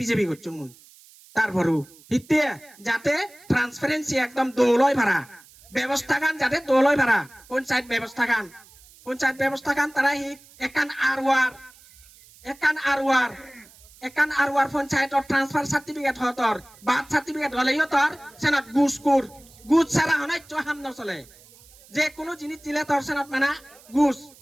বিজেপি করছো মুই তারপরও হিতে যাতে ট্রান্সপারেন্সি একদম দৌলয় ভাড়া ব্যবস্থা গান যাতে দৌলয় ভাড়া পঞ্চায়েত ব্যবস্থা গান তারা হি একান আরওয়ার পঞ্চায়েতর ট্রান্সফার সার্টিফিকেট হতর বার্থ সার্টিফিকেট হলেই তোর সেনত গুজ ছাড়া হনাই হাম নচলে যে কোনো জিনিস দিলে তোর সেনত মানে গুজ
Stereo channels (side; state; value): right; noise; hiss, 25 dB below the sound